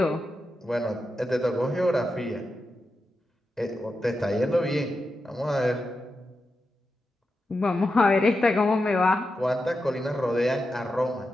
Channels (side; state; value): both; normal; correlation 0.89